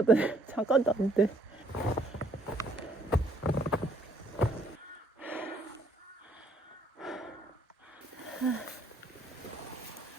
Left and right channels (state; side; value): normal; both; correlation 0.67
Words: 잠깐도 안 돼.